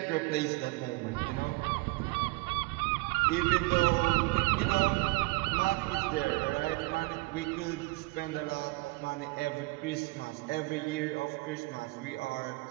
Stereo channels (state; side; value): quieter; left; 24.3 dB